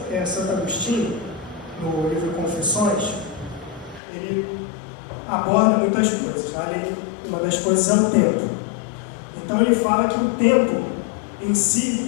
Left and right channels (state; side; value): drops out; right; at 4.0 s